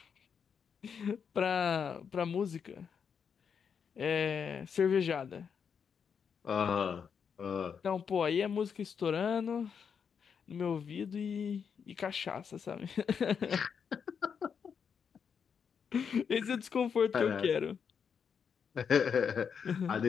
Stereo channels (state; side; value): quieter; right; 6.8 dB